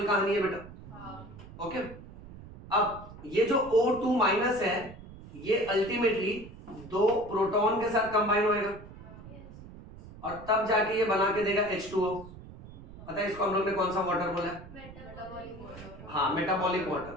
कहानी है बेटा, ओके। अब ये जो O2 माइनस है ये अल्टीमेटली 2 प्रोटॉन के साथ कंबाइन होएगा और तब जाके ये बना के देगा H2O। पता है इसको हम लोग ने कौन सा वाटर बोला है? हाँ, मेटाबॉलिक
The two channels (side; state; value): right; noise; rumble, 16 dB below the sound